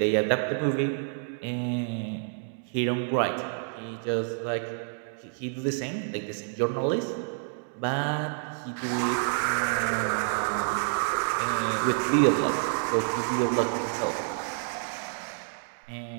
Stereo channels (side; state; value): left; silent; 59 dB below the other